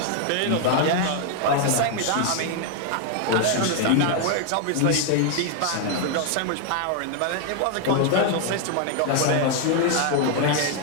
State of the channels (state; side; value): different; both; correlation 0.00